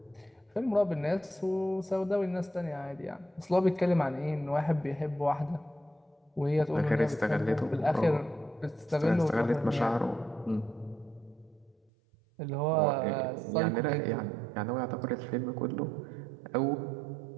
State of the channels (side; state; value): left; drops out; at 11.8 s